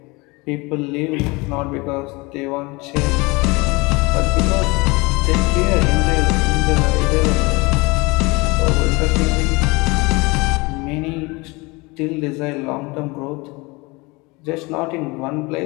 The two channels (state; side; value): quieter; right; 25.1 dB